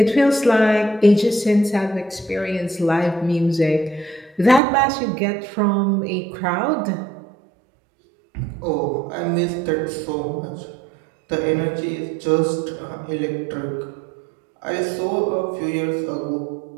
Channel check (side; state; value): left; drops out; at 4.6 s